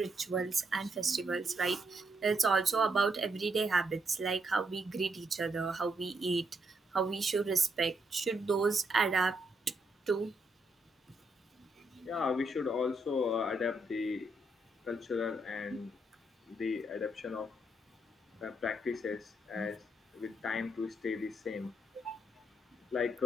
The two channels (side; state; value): both; normal; correlation 0.77